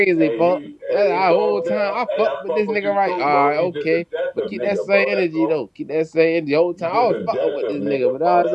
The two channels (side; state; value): both; identical; correlation 1.00